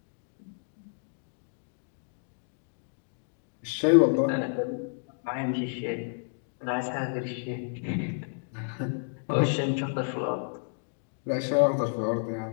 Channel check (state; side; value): silent; right; digital silence